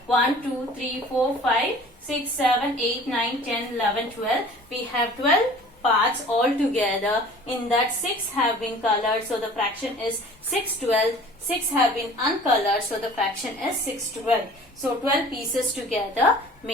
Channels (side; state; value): both; normal; correlation 0.47